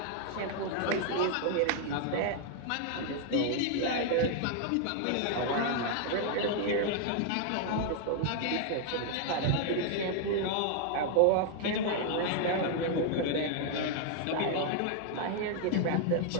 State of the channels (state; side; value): different; both; correlation 0.00